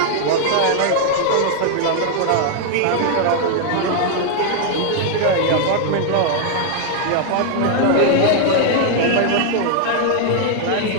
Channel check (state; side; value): different; both; correlation 0.00